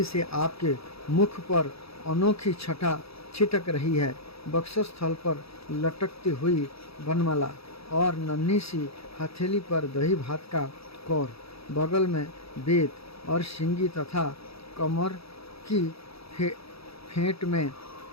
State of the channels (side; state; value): right; late; 0.77 ms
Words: से आपके मुख पर अनोखी छटा छिटक रही है। वक्षस्थल पर लटकती हुई वनमाला और नन्ही सी हथेली पर दही भात का कौर, बगल में वेद और सिंगी तथा कमर की फेंट में